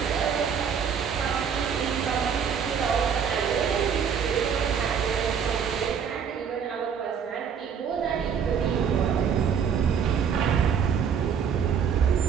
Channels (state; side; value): quieter; left; 7.3 dB